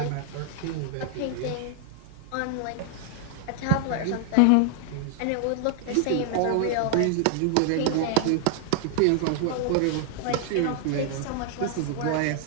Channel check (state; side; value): different; both; correlation 0.00